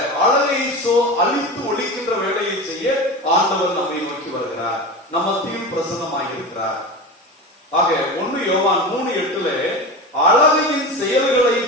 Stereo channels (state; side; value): normal; both; correlation 0.27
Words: அழகை அழித்து ஒழிக்கின்ற வேலையை செய்ய ஆண்டவர் நம்மை நோக்கி வருகிறார், நம்ம மத்தியில் பிரசன்னமாக இருக்கிறார். ஆக 1 யோவான் 3:8 அழகையின் செயல்களை